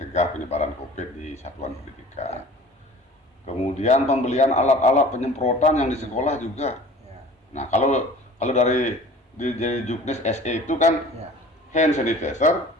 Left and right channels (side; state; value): both; normal; correlation 0.45